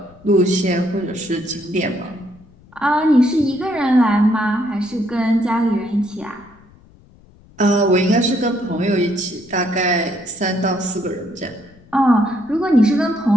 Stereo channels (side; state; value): left; noise; rumble, 26 dB below the sound